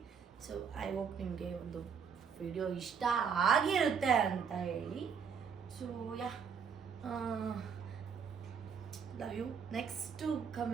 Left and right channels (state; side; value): quieter; left; 6.6 dB